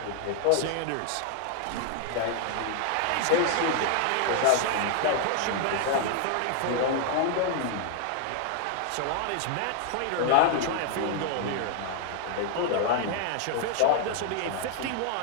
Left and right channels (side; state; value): both; different; correlation 0.00